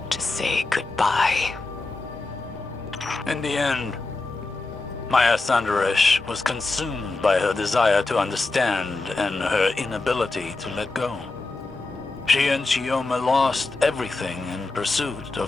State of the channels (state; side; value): quieter; right; 3.4 dB